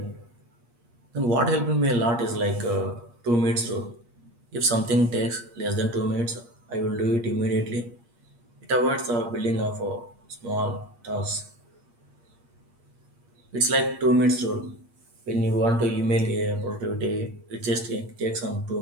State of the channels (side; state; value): left; late; 8.4 ms